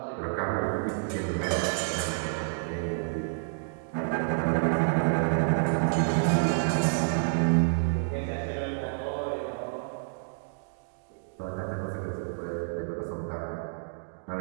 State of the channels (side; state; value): left; silent; digital silence